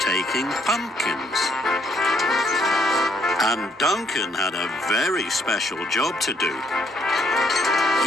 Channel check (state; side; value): normal; both; correlation 0.68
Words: taking pumpkins. And Duncan had a very special job to do.